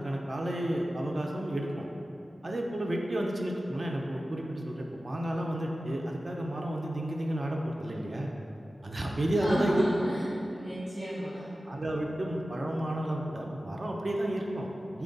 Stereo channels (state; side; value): normal; both; correlation 0.95